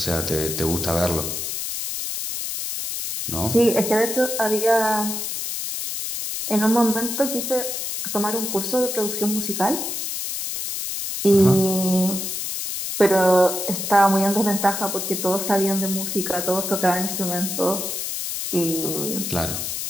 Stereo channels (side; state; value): left; noise; hiss, 4 dB below the sound